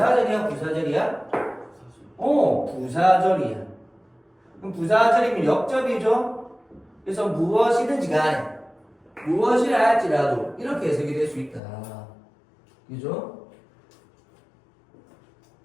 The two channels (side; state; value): right; drops out; at 11.6 s